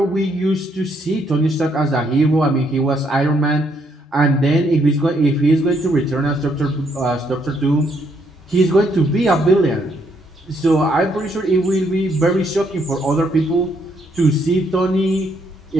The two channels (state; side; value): normal; both; correlation 0.72